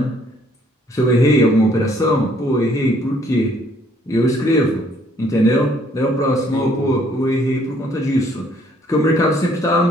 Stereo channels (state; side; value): normal; both; correlation 0.64